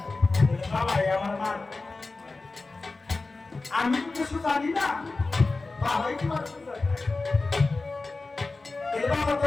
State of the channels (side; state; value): right; quieter; 3.6 dB